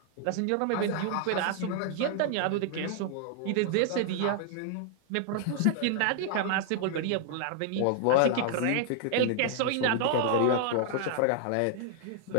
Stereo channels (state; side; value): different; both; correlation 0.00